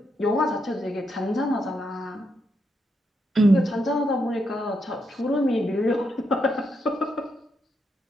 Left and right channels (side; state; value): both; normal; correlation 0.81